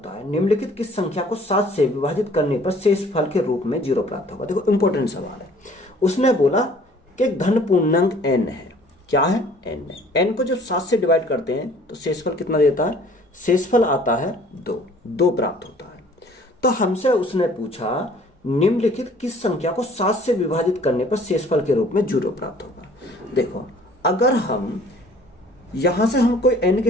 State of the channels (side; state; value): both; normal; correlation 0.54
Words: है। निम्नलिखित किस संख्या को 7 से विभाजित करने पर शेषफल के रूप में 0 प्राप्त होगा। देखो इंपॉर्टेंट सवाल है। उसने बोला कि धन पूर्णांक n है, क्या है, n है। n को जब 7 से डिवाइड करते हैं तो शेषफल कितना देता है, शेषफल आता है 2 प्राप्त होता है। तो हमसे उसने पूछा निम्नलिखित किस संख्या को 7 से विभाजित करने पर शेषफल के रूप में 0 प्राप्त होगा। देखो अगर हम यहां से हम कोई n के